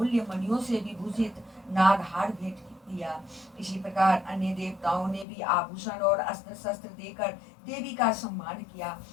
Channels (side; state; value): right; drops out; at 5.2 s